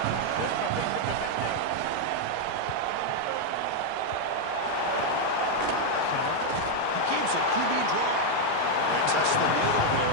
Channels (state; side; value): different; both; correlation 0.00